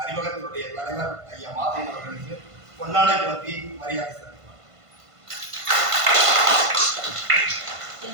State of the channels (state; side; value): late; left; 1.5 ms